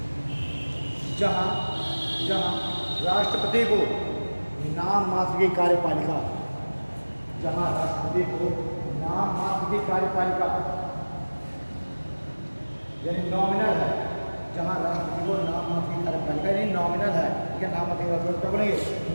जहां राष्ट्रपति को नाम मात्र की कार्यपालिका, जहां राष्ट्रपति को नाम मात्र की कार्यपालिका यानी नॉमिनल है, जहां राष्ट्रपति को नाम मात्र की कार्यपालिका यानी नॉमिनल है, क्या नाम मात्र क्या बोलेंगे,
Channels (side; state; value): both; inverted; correlation -1.00